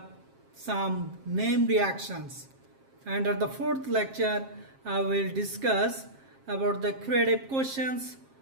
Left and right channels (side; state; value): left; late; 7.5 ms